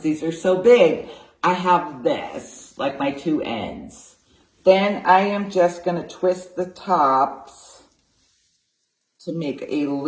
are so big. I have this, like my 2 ends. Then I am just going to twist the tops to make a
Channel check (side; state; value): both; identical; correlation 1.00